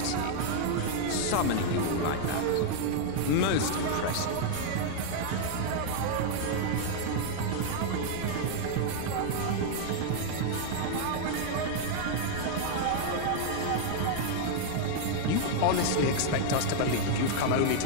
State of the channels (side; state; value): both; different; correlation -0.01